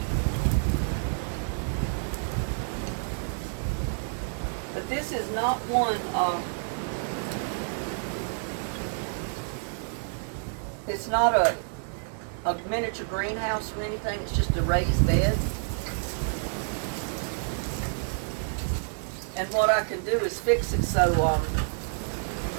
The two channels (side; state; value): left; silent; digital silence